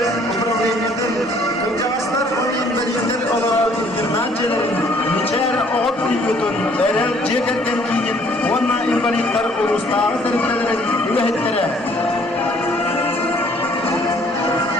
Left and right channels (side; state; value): both; normal; correlation 0.60